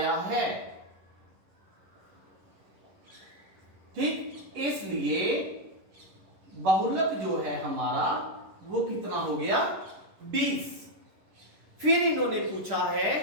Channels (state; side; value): late; left; 11 ms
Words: है, ठीक। इसलिए बहुलक जो है हमारा वो कितना हो गया? 20। फिर इन्होंने पूछा है